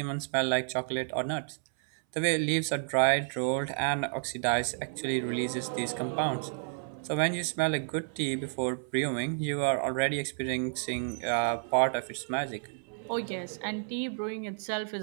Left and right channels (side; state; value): left; silent; 57 dB below the other